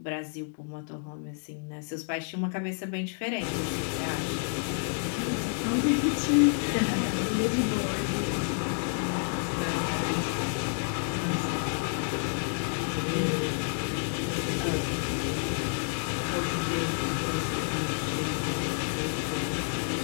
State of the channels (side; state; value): right; silent; 58 dB below the other